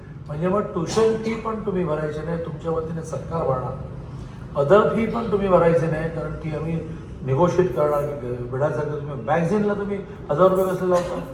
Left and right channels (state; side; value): identical; both; correlation 1.00